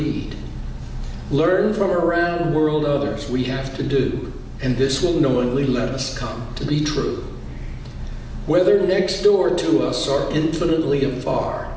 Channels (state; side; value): identical; both; correlation 1.00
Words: Learn from around world others we have to do, and this will knowingly let us come to be true. Whether next door to us or infinitely afar,